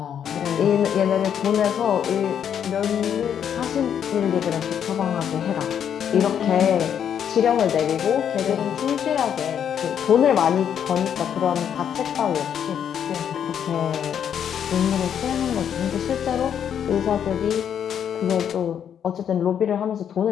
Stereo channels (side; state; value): right; quieter; 8.7 dB